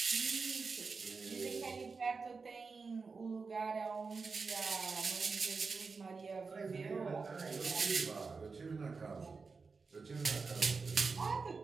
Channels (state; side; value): quieter; left; 4.6 dB